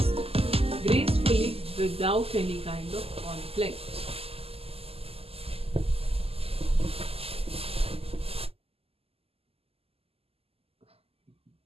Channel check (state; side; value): late; left; 0.29 ms